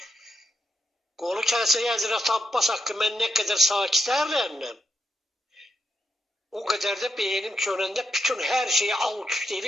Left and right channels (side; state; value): both; normal; correlation 0.82